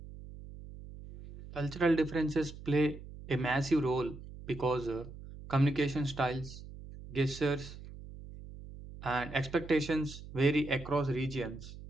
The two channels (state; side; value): noise; right; hum, 14 dB below the sound